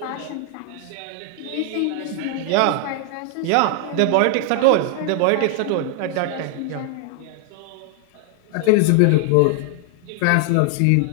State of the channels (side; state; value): both; different; correlation 0.00